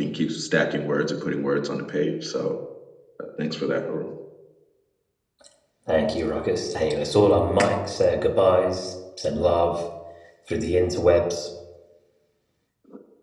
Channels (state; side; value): identical; both; correlation 1.00